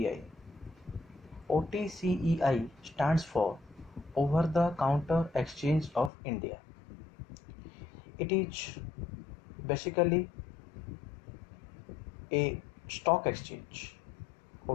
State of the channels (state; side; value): drops out; right; at 6.1 s